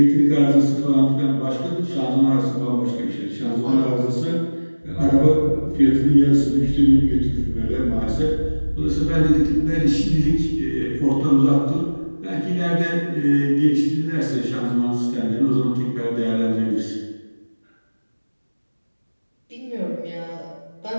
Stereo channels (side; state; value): both; inverted; correlation -1.00